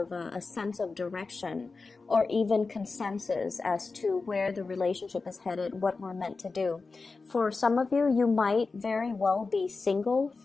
a sense of direction, or even consensus as to where the relationship is headed, what we're meant to do. For some of you, you might very well be single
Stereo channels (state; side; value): quieter; right; 4.1 dB